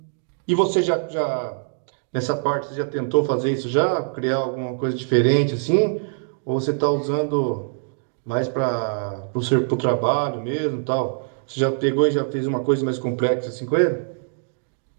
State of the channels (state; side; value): silent; left; digital silence